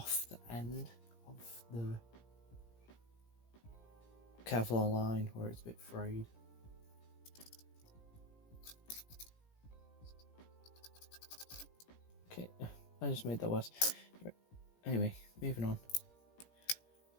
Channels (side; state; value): right; late; 17 ms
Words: the end of the Kevlar line where it's a bit frayed. Okay, I just made that worse. Anyway, moving on.